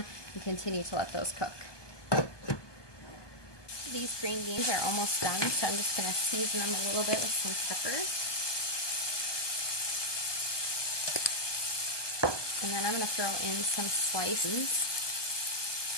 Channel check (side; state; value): right; late; 1.2 ms